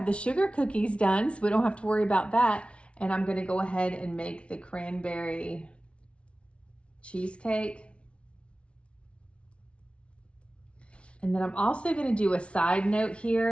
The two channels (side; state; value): right; late; 0.060 ms